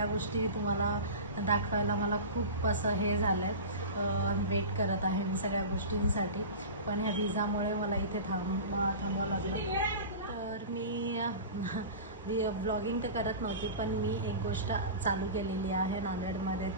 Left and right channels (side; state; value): both; inverted; correlation -0.31